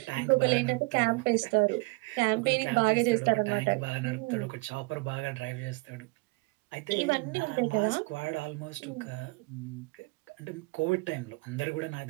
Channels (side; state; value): left; quieter; 27.1 dB